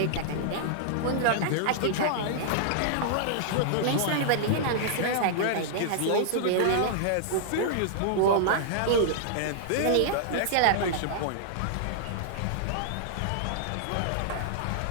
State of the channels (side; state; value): both; different; correlation -0.01